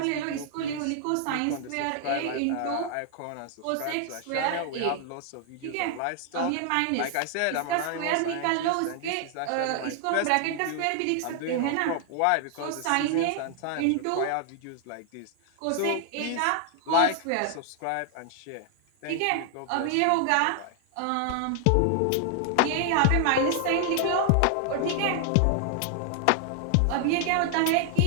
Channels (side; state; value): both; different; correlation 0.00